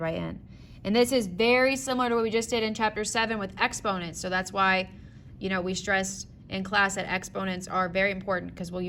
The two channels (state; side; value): identical; both; correlation 1.00